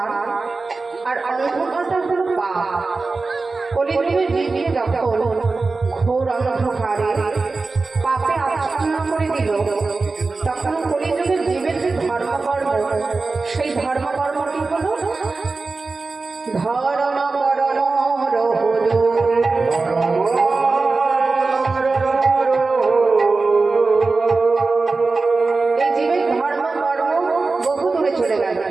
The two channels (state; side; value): quieter; left; 3.8 dB